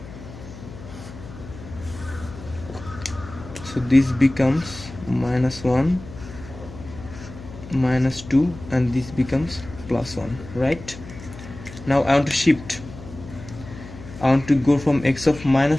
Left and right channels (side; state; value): left; noise; hum, 15 dB below the sound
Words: So this becomes minus 1, minus 2, and this becomes plus 1, right? Now I want to shift. I want to go from x of